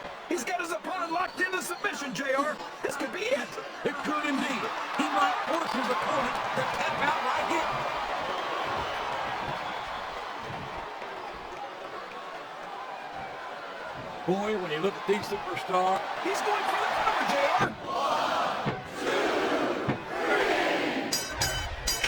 He's got his opponent locked into submission, JR. This could be it. It could indeed. He might force his opponent to tap out right here. Boy, when you look at these superstars, He's going for the cover, JR.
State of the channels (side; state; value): both; identical; correlation 1.00